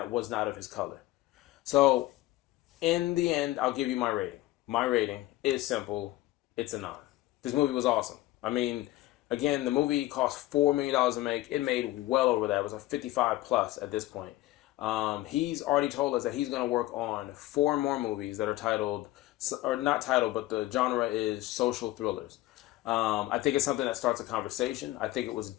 was not of his color. So in the end, I'll give you my rating. My rating is simple. It's a 9. This movie was awesome. I mean, again, the movie cost $4 million to make. It made well over that. It was a 55 plus at this point. He's already told us that he's going to work on 4 more movies that are titled, or not titled, but the genre is social thrillers. I think it's something that starts a conversation. I think it was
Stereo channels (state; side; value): quieter; right; 16.8 dB